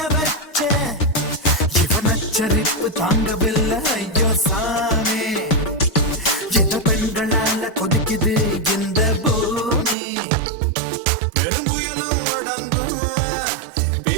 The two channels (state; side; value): drops out; left; at 10.0 s